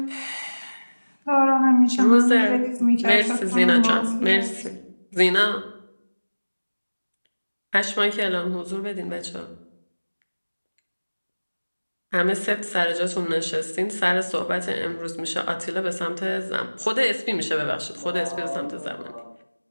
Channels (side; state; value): both; inverted; correlation -1.00